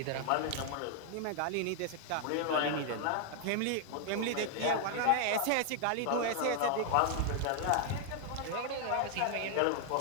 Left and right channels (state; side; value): different; both; correlation 0.00